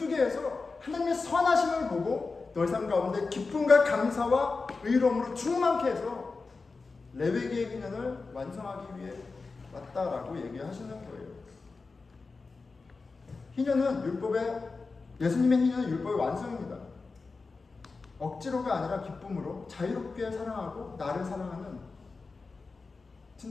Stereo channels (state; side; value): quieter; right; 4.1 dB